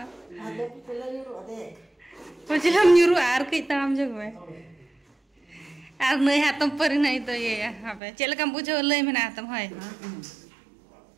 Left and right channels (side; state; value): left; drops out; at 8.0 s